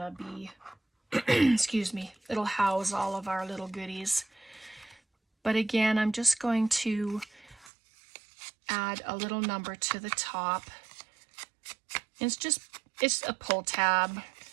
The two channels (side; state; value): left; drops out; at 7.7 s